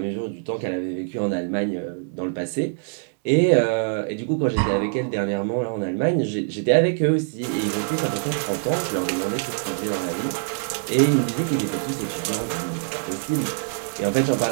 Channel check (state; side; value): silent; left; digital silence